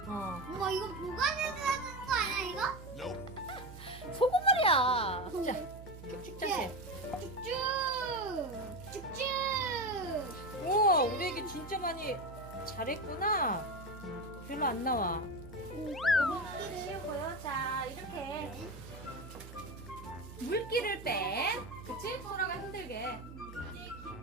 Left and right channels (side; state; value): right; noise; hum, 14 dB below the sound